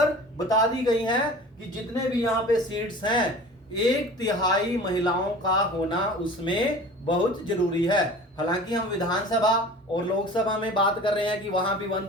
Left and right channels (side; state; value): both; normal; correlation 0.41